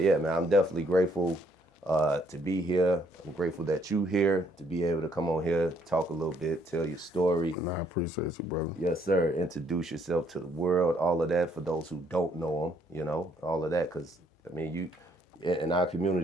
man, I'm definitely grateful to be here. I'm grateful that you here to be able to come on here, talk a little bit, tell your story. And I appreciate you, brother. Yes, sir. Introduce yourself to the world, all of that for those who don't know them, you know, all of that. Because, I mean, you, in our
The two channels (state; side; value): normal; both; correlation 0.67